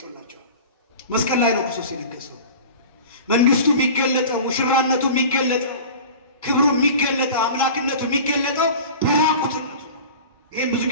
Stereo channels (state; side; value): inverted; both; correlation -0.37